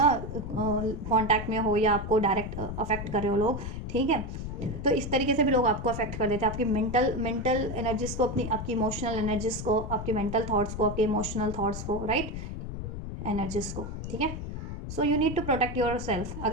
कांटेक्ट में हो या आपको डायरेक्ट अफेक्ट कर रहे हो लोग, ठीक है। तो इस तरीके से भी लोग आपको अफेक्ट कर देते हैं, आपकी मेंटल एनर्जीज को, अपनी आपकी इमोशनल एनर्जीज को, आपके मेंटल थॉट्स को, आपके इमोशनल थॉट्स को, राइट, एनर्जीज को, ठीक है। So you need to protect yourself.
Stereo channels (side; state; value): left; noise; rumble, 6 dB below the sound